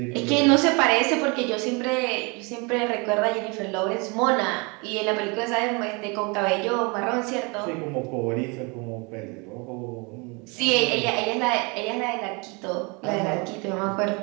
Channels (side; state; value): left; quieter; 29.6 dB